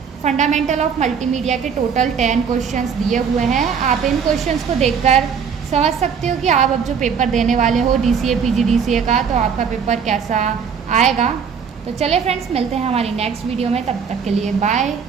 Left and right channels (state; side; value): quieter; left; 6.6 dB